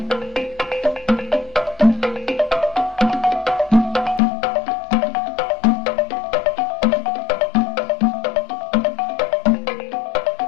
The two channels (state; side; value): drops out; right; at 4.2 s